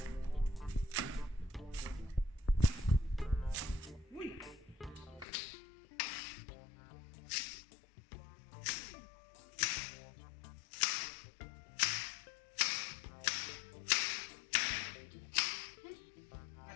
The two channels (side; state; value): right; drops out; at 5.2 s